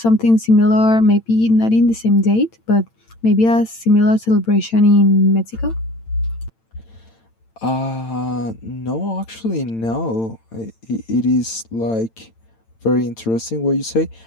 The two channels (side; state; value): right; late; 8.9 ms